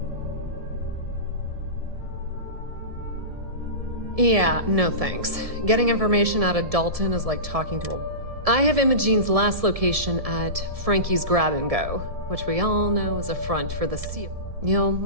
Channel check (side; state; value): left; late; 1.7 ms